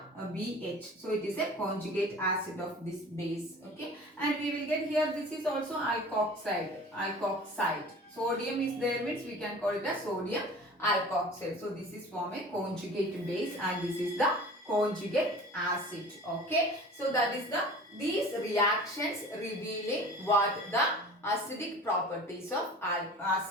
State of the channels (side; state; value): both; normal; correlation 0.41